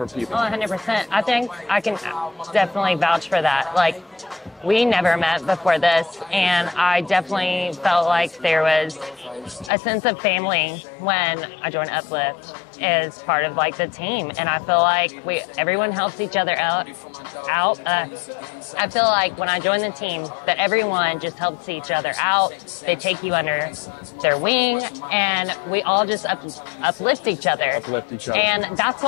people. Oh, 100%. I think I can definitely vouch for that. Like, we never met before this, and I definitely felt like there was a sense of family when I joined Uplift as part of like the team. And I feel like everyone helps each other out. I feel like when I joined the team that everyone just helps each other out. They take you under their wing, and we all just uplift each other. And that's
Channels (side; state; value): right; drops out; at 9.7 s